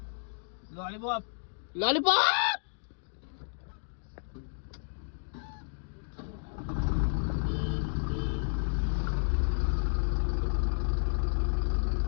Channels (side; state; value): right; silent; digital silence